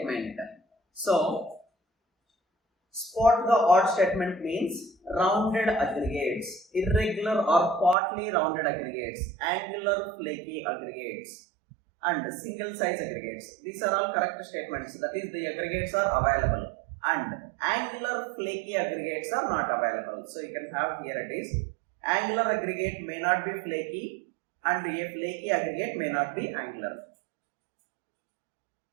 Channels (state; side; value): drops out; left; at 8.0 s